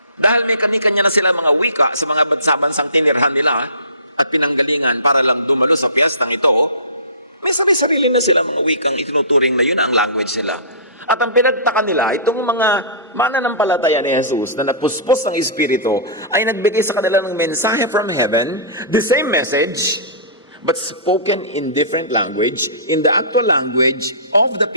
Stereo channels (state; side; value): inverted; both; correlation -0.35